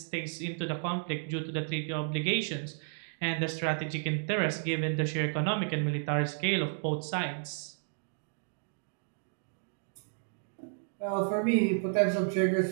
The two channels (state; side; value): silent; left; digital silence